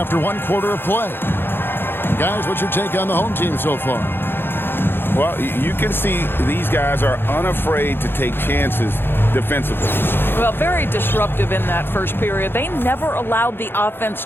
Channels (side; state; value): right; late; 0.10 ms